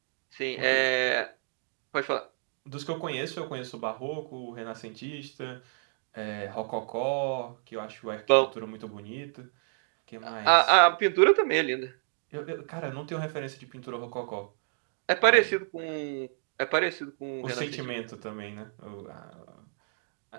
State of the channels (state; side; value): silent; left; digital silence